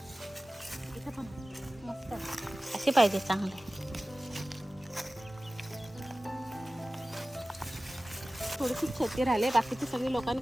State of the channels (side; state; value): both; normal; correlation 0.96